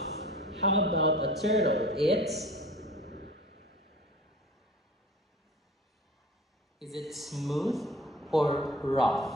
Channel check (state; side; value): normal; both; correlation 0.42